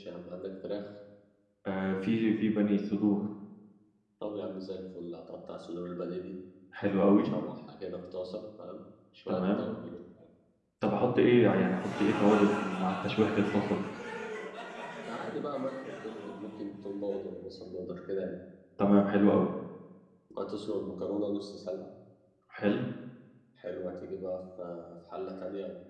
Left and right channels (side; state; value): both; identical; correlation 1.00